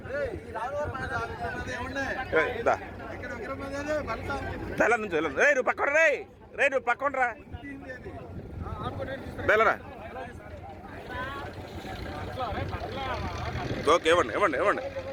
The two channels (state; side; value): identical; both; correlation 1.00